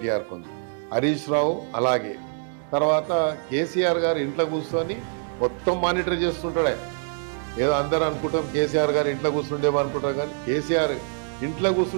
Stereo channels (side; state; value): left; silent; digital silence